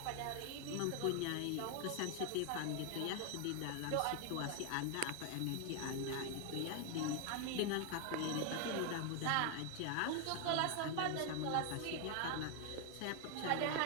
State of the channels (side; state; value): both; different; correlation 0.01